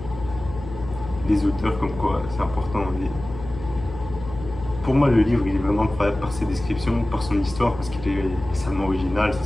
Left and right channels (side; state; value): left; noise; hum, 12 dB below the sound